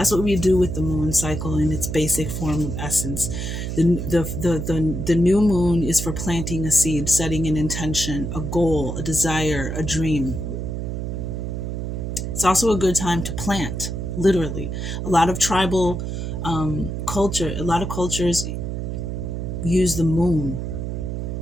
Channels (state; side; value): noise; right; hum, 4 dB below the sound